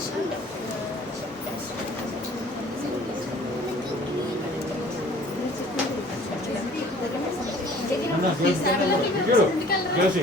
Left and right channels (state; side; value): normal; both; correlation 0.52